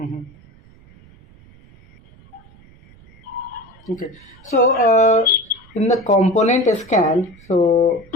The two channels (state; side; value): noise; right; rumble, 26 dB below the sound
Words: Okay. So in the component scan, so